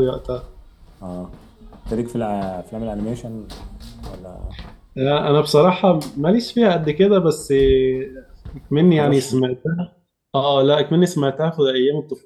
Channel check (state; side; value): identical; both; correlation 1.00